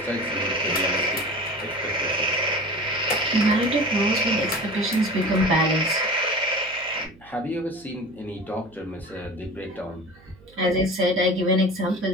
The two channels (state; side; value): noise; right; hum, 26 dB below the sound